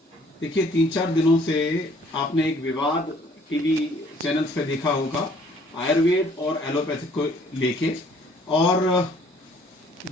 देखिए, 3-4 दिनों से आपने एक विवाद टीवी चैनल्स पे देखा होगा आयुर्वेद और एलोपैथिक को लेके। और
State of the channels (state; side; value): normal; both; correlation 0.59